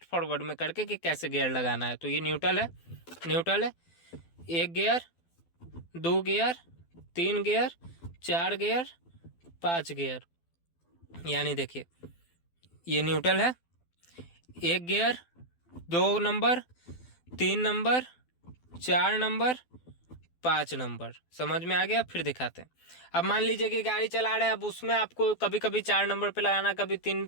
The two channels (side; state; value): right; late; 12 ms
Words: फॉरवर्ड में करके कि कैसे गियर लगाना है। तो ये न्यूट्रल है, न्यूट्रल है, 1 gear, 2 gear, 3 gear, 4 gear, 5 gear, यानी देखिए ये न्यूट्रल है, 1 gear, 2 number, 3 number, 4 number, 5 number. समझ में आ गया? फिर दिखाते हैं। अब मान लीजिए कि गाड़ी चला रहे हैं, अब उसमें आपको कभी कभी 4 नंबर पे लगाना है, कभी 3